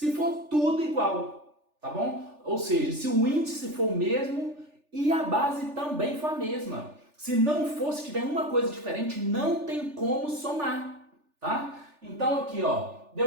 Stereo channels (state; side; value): late; left; 3.4 ms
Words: for tudo igual, tá bom? Ou seja, se o índice for o mesmo e a base também for a mesma. Se não for, se tiver uma coisa diferente, não tem como somar, tá? Então aqui, ó,